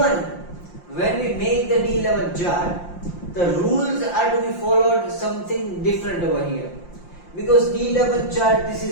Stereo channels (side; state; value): right; late; 5.7 ms